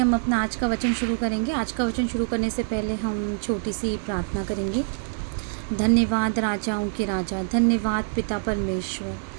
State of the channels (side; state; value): left; silent; 59 dB below the other